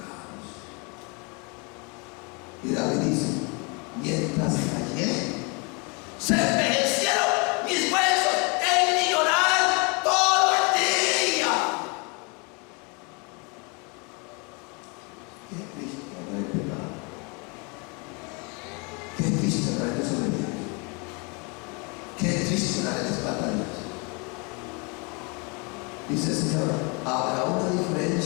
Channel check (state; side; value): quieter; right; 31.7 dB